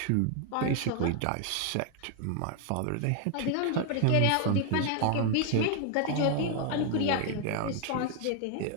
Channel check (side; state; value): both; different; correlation 0.00